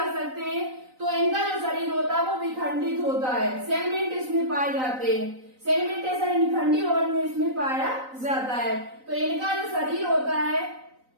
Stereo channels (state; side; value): late; left; 3.9 ms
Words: सकते हैं। तो इनका जो शरीर होता है वो विखंडित होता है, सेगमेंट इसमें पाए जाते हैं। सेगमेंटेशन खंडी भवन में इसमें पाया जाता है। तो इनका जो शरीर होता है,